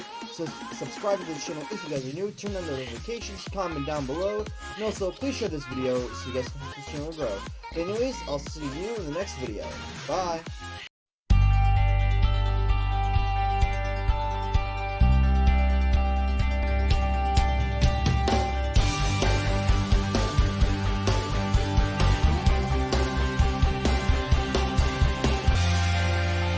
So subscribe to the channel if you guys are new. Turn on notifications, comment down below. And also, please share this video so you guys can help this channel grow. But anyways, I'll see you in the next video. Bye!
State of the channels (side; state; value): both; identical; correlation 1.00